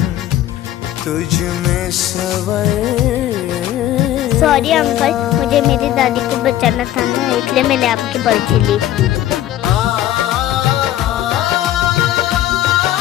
तुझ में सवर। सॉरी अंकल, मुझे मेरी दादी को बचाना था ना, इसलिए मैंने आपकी पर्ची ली।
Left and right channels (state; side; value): quieter; right; 12.9 dB